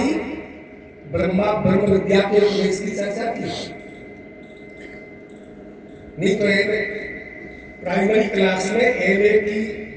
ब्रह्म विद्या के उपदेश की चर्चा की। नहीं तो प्राइमरी क्लास में एमए की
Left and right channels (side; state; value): both; identical; correlation 1.00